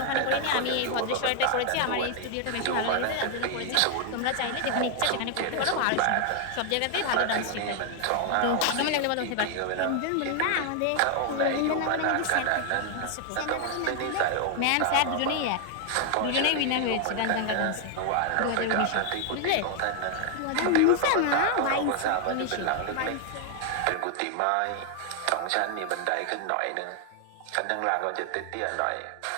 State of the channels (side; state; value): both; different; correlation 0.00